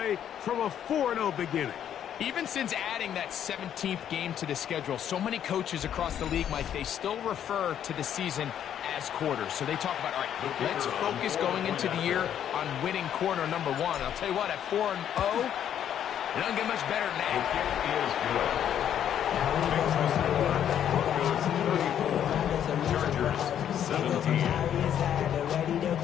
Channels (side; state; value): right; quieter; 9.8 dB